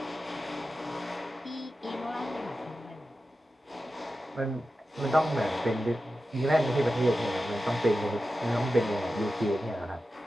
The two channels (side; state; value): both; normal; correlation 0.92